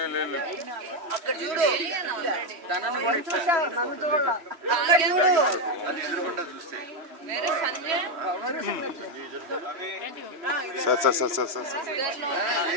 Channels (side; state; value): left; late; 3.1 ms